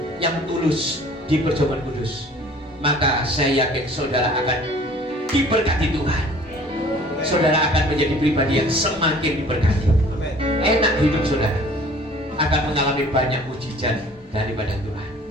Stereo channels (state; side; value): normal; both; correlation 0.51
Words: yang tulus di perjamuan kudus, maka saya yakin saudara akan diberkati Tuhan. Saudara akan menjadi pribadi yang semakin diberkati. Enak hidup saudara, akan mengalami banyak mujizat daripada Tuhan.